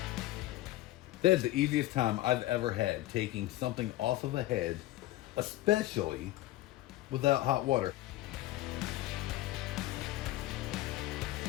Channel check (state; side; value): quieter; right; 16.4 dB